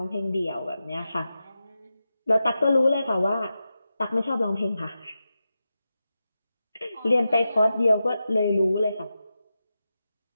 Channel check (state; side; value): inverted; both; correlation -0.91